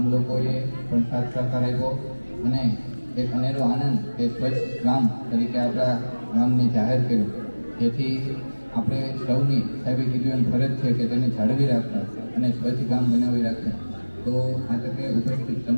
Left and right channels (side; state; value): both; inverted; correlation -1.00